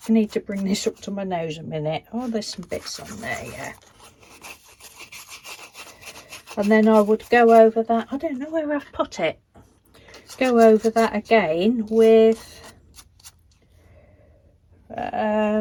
need to bring this up to my nose a minute. Oh, there's some bits on there, yeah. And then I would go over that, I don't know where I've put it. Go over that again with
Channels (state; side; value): identical; both; correlation 1.00